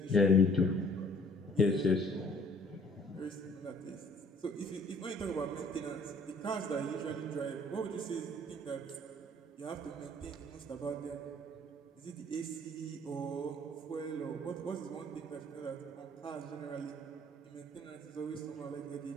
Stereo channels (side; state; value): both; normal; correlation 0.57